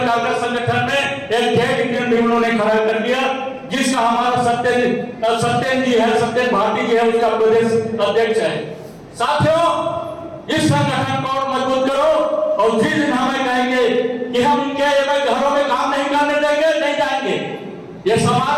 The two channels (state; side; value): identical; both; correlation 1.00